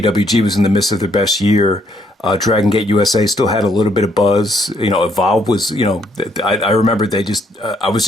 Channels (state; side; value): normal; both; correlation 0.70